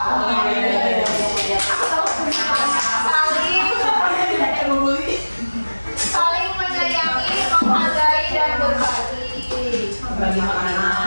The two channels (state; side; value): inverted; both; correlation -1.00